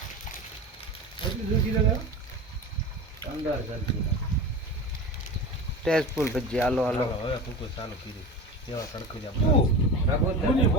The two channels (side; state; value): both; normal; correlation 0.30